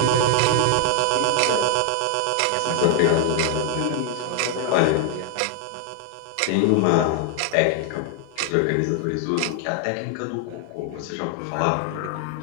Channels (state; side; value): different; both; correlation 0.00